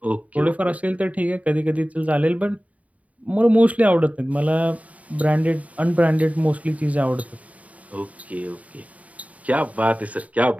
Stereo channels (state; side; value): late; left; 0.069 ms